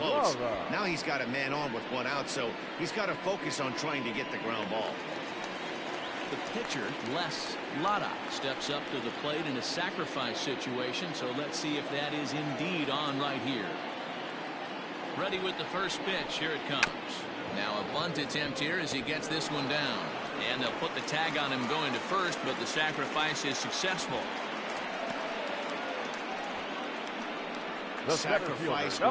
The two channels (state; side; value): identical; both; correlation 1.00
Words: Bravo. Now he's got a man on with 1 out, so he's got to focus on trying to get the ground ball. The pitcher, Les Lada, steps up to the plate in a sacrifice situation, so let's see if that is indeed on right here. Ready with the first pitch. Here it comes. Now a bunt attempt here as he gets this one down. And they'll put the tag on him going to first, but the sacrifice is successful. The center Sacrifice